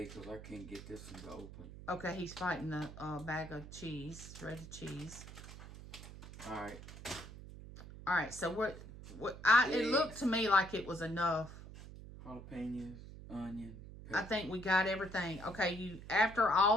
because I can't get this one to open. Okay, he's fighting the bag of cheese, shredded cheese. Alright. Alright, so it looked to me like it was enough. Jalapeños, onion, pepper. I think we got everything. Okay, after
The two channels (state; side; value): noise; right; hum, 14 dB below the sound